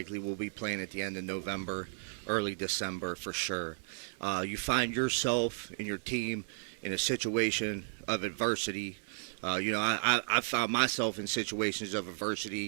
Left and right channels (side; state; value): left; silent; digital silence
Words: will be playing at the end of November, early December for sure. You find yourself and your team in a situation of adversity. I've found myself in situations of